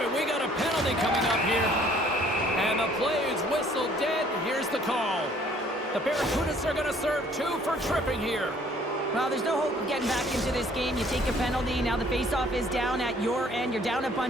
and we got a penalty coming up here. And the play is whistled dead. Here's the call. The Barracudas are going to serve 2 for tripping here. Well, there's no hope of getting back into this game. You take a penalty. Now the faceoff is down at your end. You're down a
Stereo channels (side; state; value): both; normal; correlation 0.59